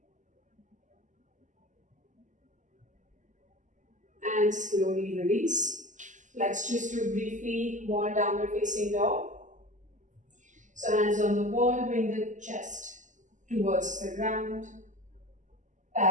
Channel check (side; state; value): left; late; 0.36 ms